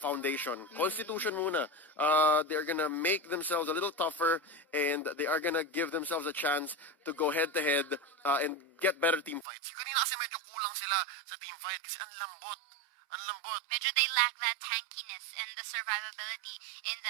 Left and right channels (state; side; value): drops out; left; at 9.5 s